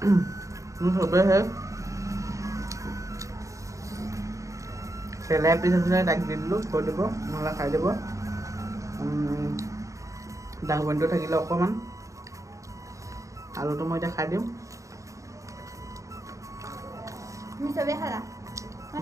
বাৰু চবেহে চেলাই পিছ আছিলে তাক দি দিলোঁ থৈ দিব নহ'লে খাই দিব ডাঙবনিটো থাকিলে অকণমান আলুটো মই এতিয়া খাই দিম তুমি চবেই খালা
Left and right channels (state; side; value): late; left; 0.15 ms